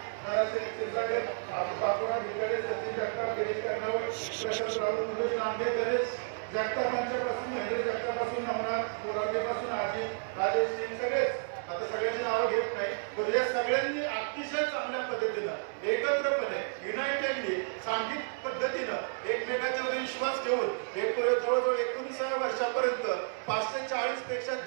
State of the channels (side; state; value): left; silent; digital silence